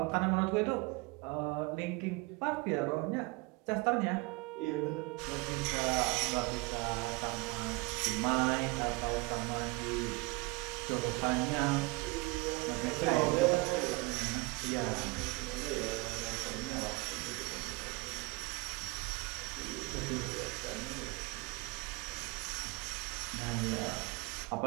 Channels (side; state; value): left; quieter; 26.0 dB